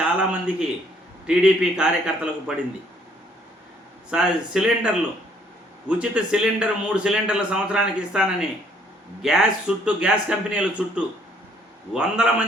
టీడీపీ కార్యకర్తలకు పడింది. సిలిండర్లు, ఉచిత సిలిండర్ 3 సిలిండర్ల సంవత్సరానికి ఇస్తానని గ్యాస్ కంపెనీల చుట్టూ వందల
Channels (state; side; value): normal; both; correlation 0.64